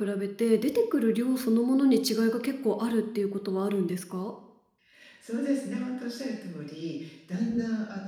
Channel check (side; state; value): both; identical; correlation 1.00